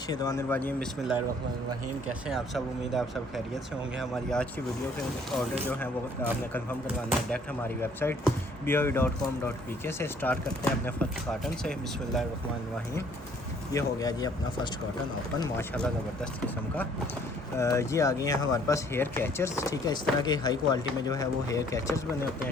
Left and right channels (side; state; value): both; normal; correlation 0.60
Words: बिस्मिल्लाहिर्रहमानिर्रहीम। कैसे हैं आप सब? उम्मीद है आप सब खैरियत से होंगे। हमारी आज की वीडियो के ऑर्डर जो है वो आपने कंफर्म करवाना है डायरेक्ट हमारी वेबसाइट boe.com.pk से। स्टार्ट करते हैं अपने फर्स्ट कॉटन से। बिस्मिल्लाहिर्रहमानिर्रहीम। ये हो गया जी अपना फ़र्स्ट कॉटन ओपन, माशाल्लाह ज़बरदस्त किस्म का। ये आ गए हैं हमारे पास हेयर कैचर्स, ठीक है। इस तरह के हाई क्वालिटी में जो है वो हेयर कैचर्स बने होते